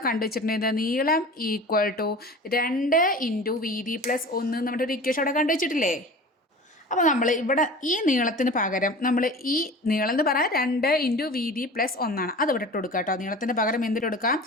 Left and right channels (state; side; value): normal; both; correlation 0.37